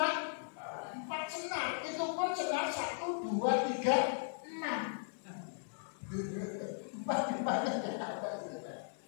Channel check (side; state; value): right; silent; 53 dB below the other